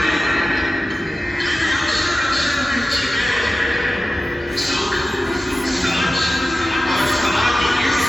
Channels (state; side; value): normal; both; correlation 0.94